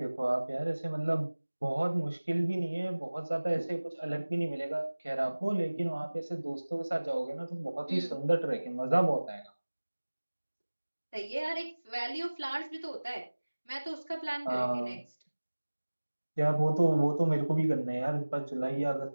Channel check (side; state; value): both; inverted; correlation -1.00